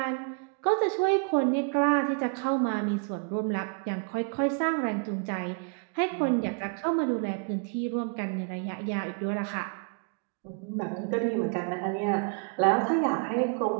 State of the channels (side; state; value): left; quieter; 37.9 dB